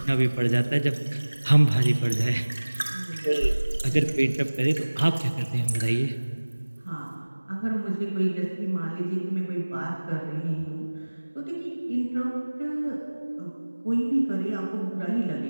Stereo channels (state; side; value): inverted; both; correlation -1.00